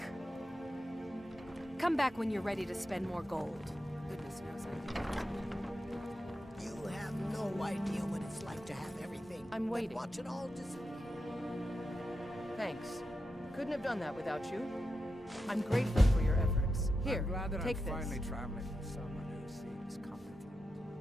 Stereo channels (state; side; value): normal; both; correlation 0.88